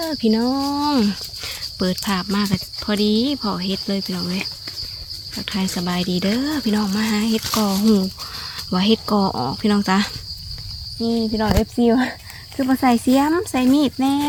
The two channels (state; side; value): identical; both; correlation 1.00